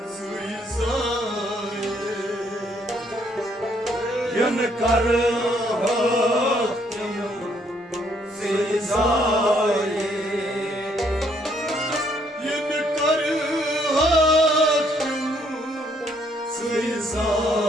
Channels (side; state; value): both; normal; correlation 0.68